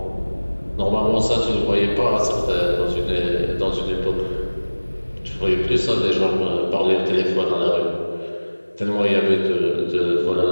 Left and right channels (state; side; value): inverted; both; correlation -1.00